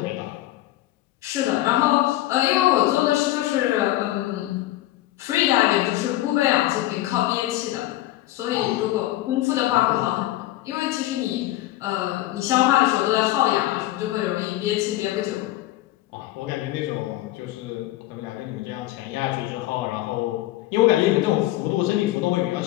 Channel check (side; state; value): right; quieter; 15.9 dB